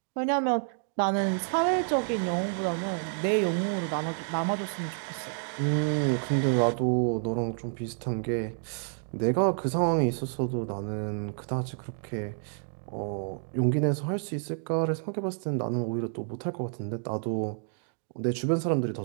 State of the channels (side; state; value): left; silent; digital silence